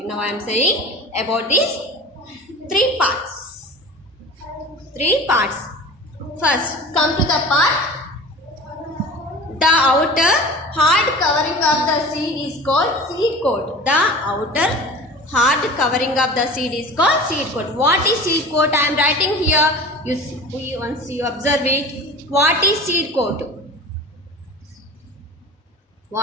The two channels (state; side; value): normal; both; correlation 0.37